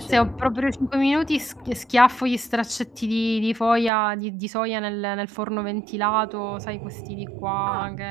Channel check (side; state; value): left; drops out; at 3.9 s